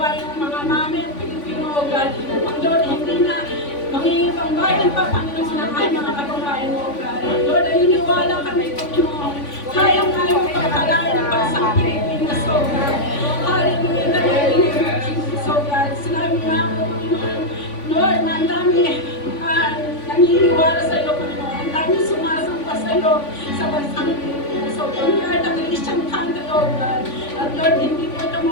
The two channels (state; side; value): late; right; 3.5 ms